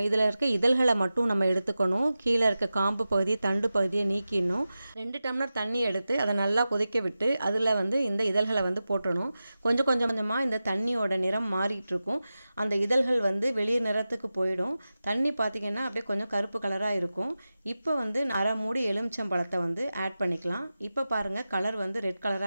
இதில் இருக்க இதழ்களை மட்டும் நம்ம எடுத்துக்கணும். கீழே இருக்க காம்பு பகுதி தண்டு பகுதியை நீக்கிடணும். 2 டம்ளர் தண்ணி எடுத்து அதை நல்லா கொதிக்க விட்டு அதில் வந்து இந்த இதழ்களை வந்து போட்டணும். கொஞ்சம் கொஞ்சமாக இந்த தண்ணியோட நிறம் மாறிட்டு இருக்கும். அந்த இதழ்கள் வந்து வெளிர் நிறத்துக்கு போயிடும். தண்ணி பார்த்திங்கன்னா அப்படியே கொஞ்சம் கருப்பு கலராக இருக்கும். இப்போ வந்து அரை மூடி எலுமிச்சம்பழத்தை வந்து ஆட் பண்ணிக்கலாம். இப்போ பாருங்கள், கலர் வந்து ரெட்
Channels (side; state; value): both; inverted; correlation -0.94